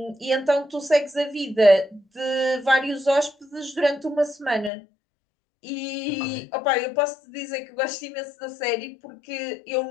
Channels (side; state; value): right; drops out; at 4.7 s